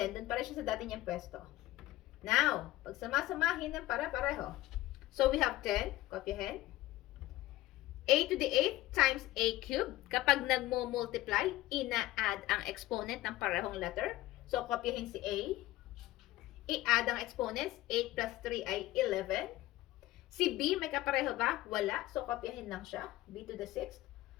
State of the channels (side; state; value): right; quieter; 16.7 dB